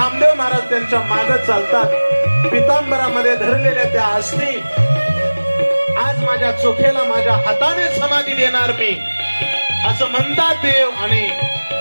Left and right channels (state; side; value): inverted; both; correlation -1.00